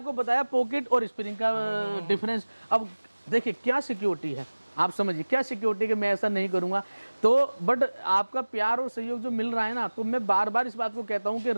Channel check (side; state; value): both; inverted; correlation -1.00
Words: बताया पॉकेट और स्प्रिंग का डिफरेंस। अब देखिए क्या सिक्योरिटी है, आप समझिए क्या सिक्योरिटी, कि मैं ऐसा नहीं करूंगा तो बट आपका प्यार और सहयोग जो मिल रहा है ना, तो मैं बार बार इस बात को कहता हूं कि